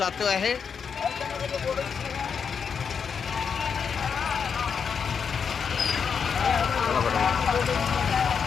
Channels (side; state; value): right; quieter; 6.5 dB